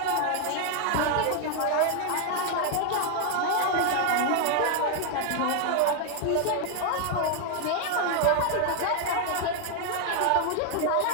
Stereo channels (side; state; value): both; different; correlation 0.00